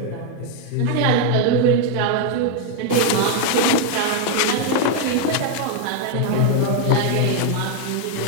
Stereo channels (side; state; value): both; different; correlation 0.01